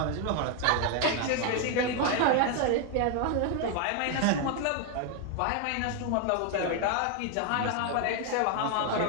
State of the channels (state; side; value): different; both; correlation 0.01